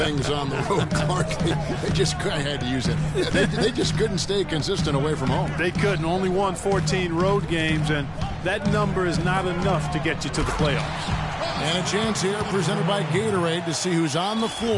on the road, Clark. I had to use it. They just couldn't stay consistent away from home. They couldn't. Only won 14 road games, and that number is not enough to get you to the playoffs. And a chance here presented by Gatorade to see who's on the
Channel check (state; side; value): identical; both; correlation 1.00